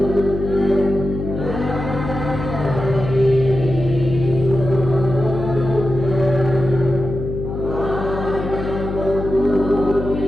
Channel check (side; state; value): left; noise; hum, 6 dB below the sound